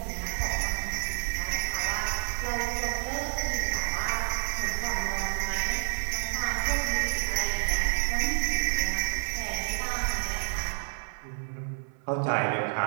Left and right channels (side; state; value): left; silent; 56 dB below the other